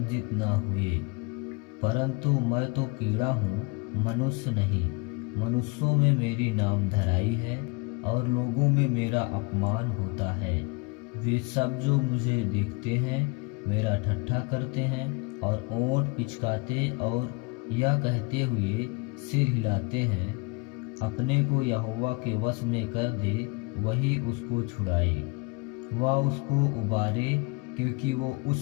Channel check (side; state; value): right; quieter; 27.5 dB